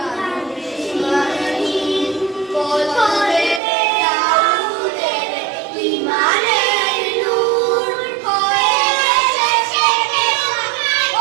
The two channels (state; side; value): drops out; left; at 3.6 s